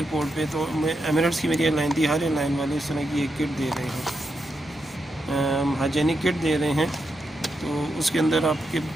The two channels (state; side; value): normal; both; correlation 0.84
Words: पे तो एमिरेट्स की मेरी एयरलाइन थी, हर एयरलाइन वाले इस तरह की एक किट दे रहे हैं, हाइजेनिक किट दे रहे हैं। तो उसके अंदर आपके